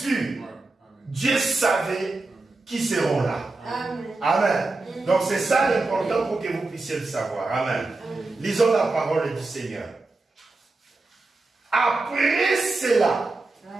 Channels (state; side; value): quieter; left; 3.3 dB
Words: Dieu savait qui seront là. Amen. Amen. Donc c'est ça l'important pour que vous puissiez le savoir. Amen. Lisons la parole du Seigneur. Après cela,